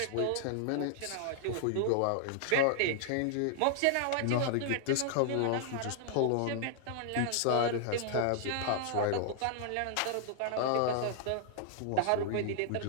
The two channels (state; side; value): different; both; correlation -0.01